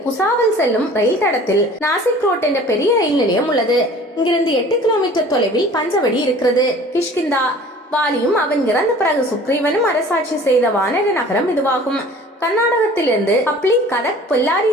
புசாவல் செல்லும் ரயில் தடத்தில் நாசிக் ரோட் என்ற பெரிய ரயில் நிலையம் உள்ளது. இங்கிருந்து 8 கிலோமீட்டர் தொலைவில் பஞ்சவடி இருக்கிறது. கிஷ்கிந்தா. வாலியும் அவன் இறந்த பிறகு சுக்ரீவனும் அரசாட்சி செய்த வானர நகரம் இதுவாகும். கர்நாடகத்திலிருந்து ஹப்ளி, கதக், பொல்லாரி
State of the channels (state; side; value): normal; both; correlation 0.46